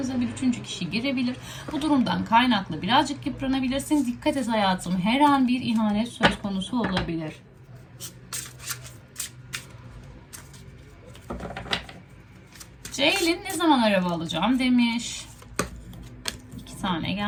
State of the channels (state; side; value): identical; both; correlation 1.00